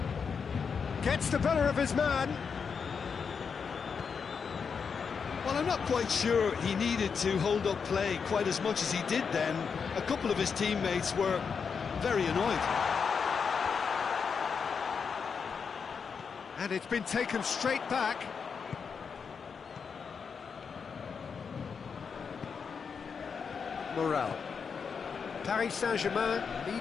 Gets the better of his man. Well, I'm not quite sure he needed to hold up play quite as much as he did then. A couple of his teammates were very annoyed. And it's been taken straight back. Morel. Paris Saint-Germain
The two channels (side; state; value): right; quieter; 6.0 dB